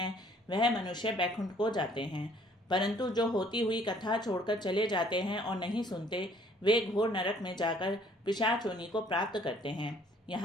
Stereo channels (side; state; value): both; normal; correlation 0.59